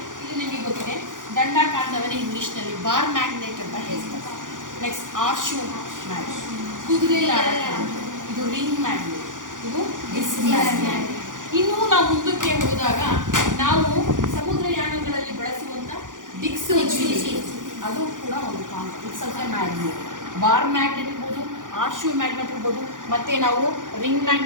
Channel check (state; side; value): late; left; 0.88 ms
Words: ಇಲ್ಲಿ ನಿಮಗೆ ಗೊತ್ತಿದೆ ದಂಡಾಕಾಂತವನ್ನು ಇಂಗ್ಲೀಷ್ನಲ್ಲಿ ಬಾರ್ ಮ್ಯಾಗ್ನೆಟ್ ಅಂತ ಹೇಳ್ತಾರೆ. ನೆಕ್ಸ್ಟ್ ಆರ್ಶು ಮ್ಯಾಗ್ನೆಟ್, ಕುದುರೆ ಇದು ರಿಂಗ್ ಮ್ಯಾಗ್ನೆಟ್, ಇದು ಡಿಸ್ಕ್ ಮ್ಯಾಗ್ನೆಟ್. ಇನ್ನೂ ನಾವು ಮುಂದಕ್ಕೆ ಹೋದಾಗ ನಾವು ಸಮುದ್ರಯಾನಗಳಲ್ಲಿ ಬಳಸುವಂಥ ದಿಕ್ಸೂಚಿ, ಅದು ಕೂಡ ಒಂದು ಕಾಂತ. It's also magnet. Bar magnet ಇರ್ಬೋದು, ಆರ್ಶು ಮ್ಯಾಗ್ನೆಟ್ ಇರ್ಬೋದು, ಮತ್ತು ನಾವು ರಿಂಗ್